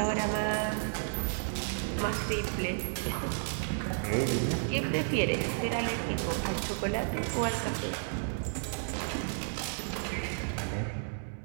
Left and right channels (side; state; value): left; silent; digital silence